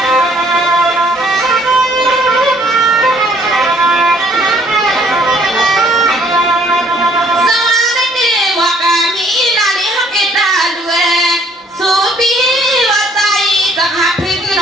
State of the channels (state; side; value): normal; both; correlation 0.62